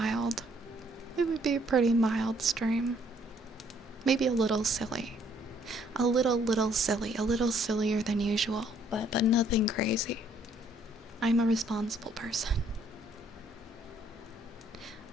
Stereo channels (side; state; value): both; normal; correlation 0.65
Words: It would be a pretty mild stream. Maybe a little silly. A little silly. A little sillier than usual. But nothing crazy. I'm a responsible person.